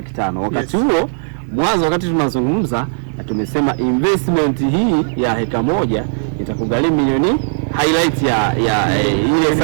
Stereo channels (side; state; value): left; silent; digital silence